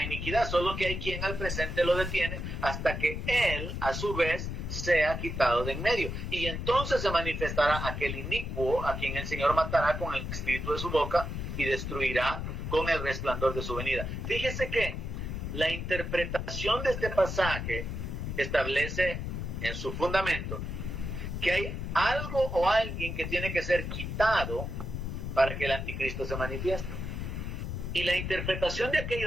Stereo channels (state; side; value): noise; left; rumble, 4 dB below the sound